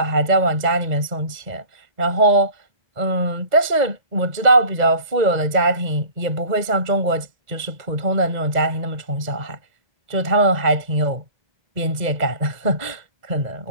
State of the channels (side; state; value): left; late; 2.0 ms